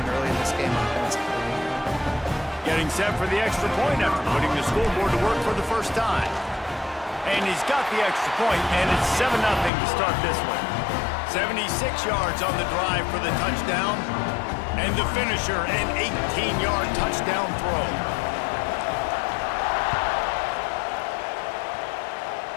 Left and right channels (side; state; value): right; drops out; at 9.7 s